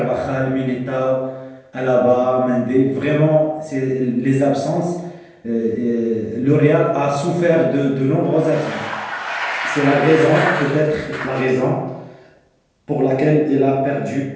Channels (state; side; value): identical; both; correlation 1.00